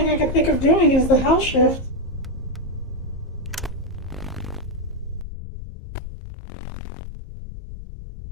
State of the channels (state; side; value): drops out; right; at 5.2 s